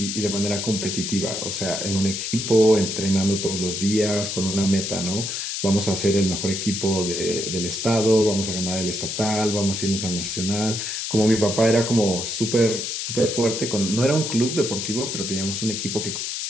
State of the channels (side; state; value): left; noise; hiss, 3 dB below the sound